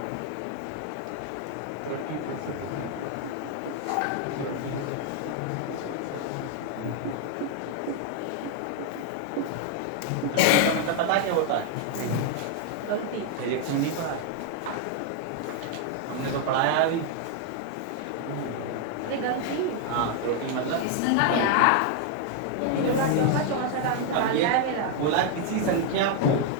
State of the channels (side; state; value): both; different; correlation 0.00